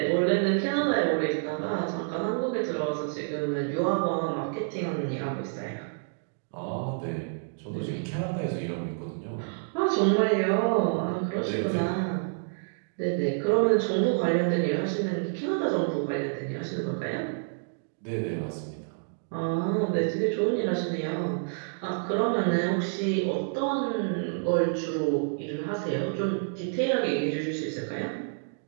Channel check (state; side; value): silent; left; digital silence